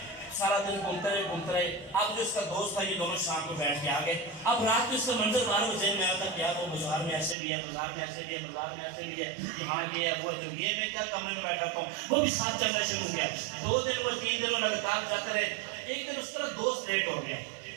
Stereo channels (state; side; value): drops out; left; at 7.4 s